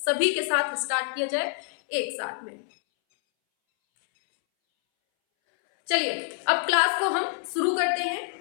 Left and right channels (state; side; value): silent; right; 61 dB below the other